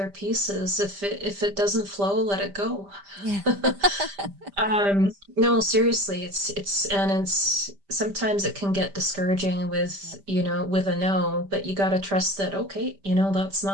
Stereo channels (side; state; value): left; late; 5.0 ms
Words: pieces. If it doesn't flow, let it go. yeah. No, seriously, it's sometimes it can get discouraging Yep. with, you know, with a no, but you got to trust that, okay, you know, that's